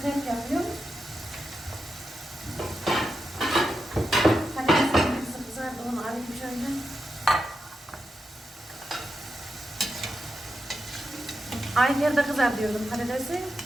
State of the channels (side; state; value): both; normal; correlation 0.87